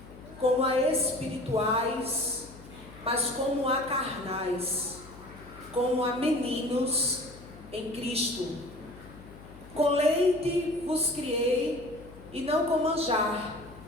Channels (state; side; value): noise; left; hum, 18 dB below the sound